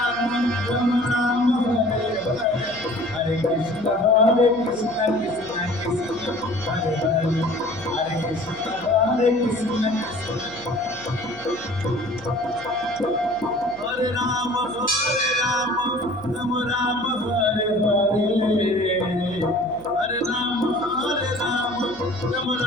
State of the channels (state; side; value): noise; left; hum, 21 dB below the sound